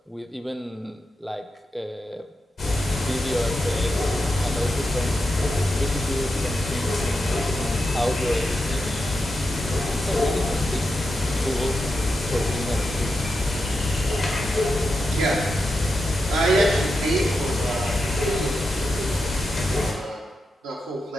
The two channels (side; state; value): both; normal; correlation 0.88